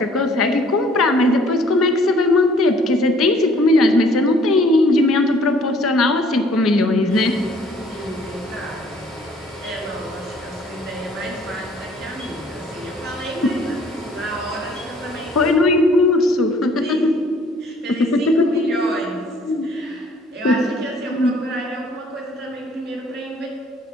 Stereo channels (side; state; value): both; normal; correlation 0.58